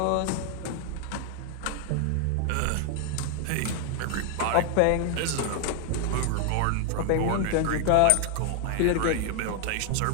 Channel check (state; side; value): different; both; correlation 0.00